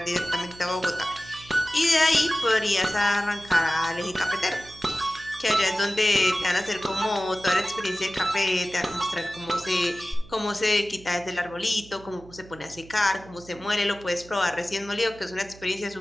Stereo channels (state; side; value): noise; right; hum, 20 dB below the sound